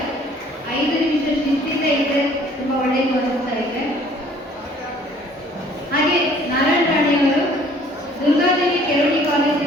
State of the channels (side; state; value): both; normal; correlation 0.56